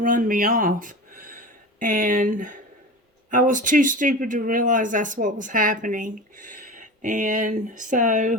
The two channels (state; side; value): normal; both; correlation 0.31